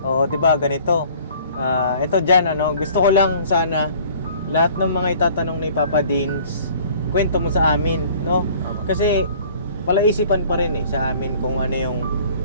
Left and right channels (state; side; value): inverted; both; correlation -0.52